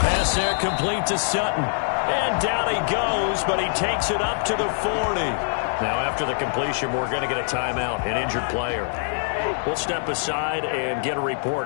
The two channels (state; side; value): silent; right; 56 dB below the other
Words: there complete to Sutton. And down he goes, but he takes it up to the 40. Now, after the completion, we're going to get a timeout, an injured player. We'll step aside and get a